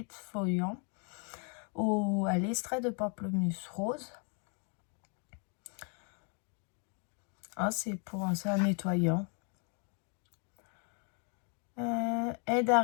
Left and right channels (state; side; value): quieter; right; 38.7 dB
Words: à l'extrait de pamplemousse rose. Ah, c'est un nettoyant. Aide à